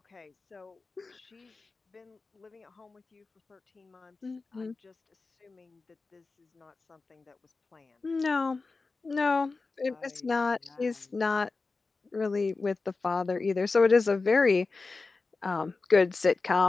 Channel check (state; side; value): quieter; right; 3.9 dB